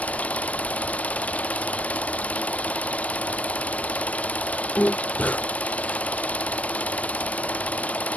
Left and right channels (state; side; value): late; right; 0.075 ms